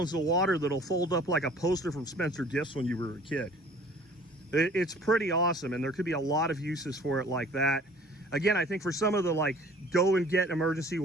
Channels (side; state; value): both; normal; correlation 0.51